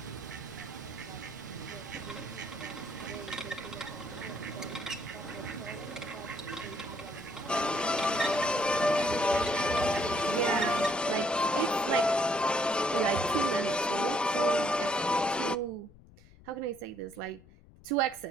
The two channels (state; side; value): noise; left; rumble, 24 dB below the sound